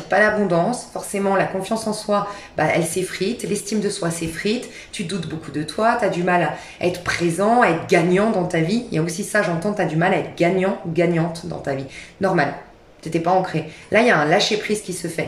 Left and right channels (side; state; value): both; identical; correlation 1.00